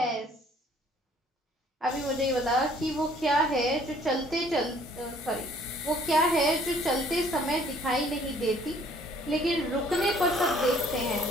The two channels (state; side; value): normal; both; correlation 0.59